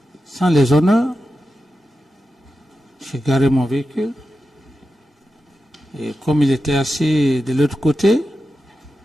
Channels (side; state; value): both; normal; correlation 0.91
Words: sans les honneurs. J'ai garé mon véhicule. Et comme il était assis de l'autre côté,